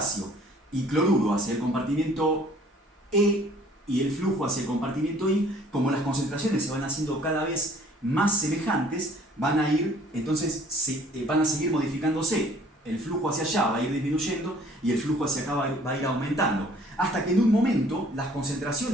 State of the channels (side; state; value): both; normal; correlation 0.56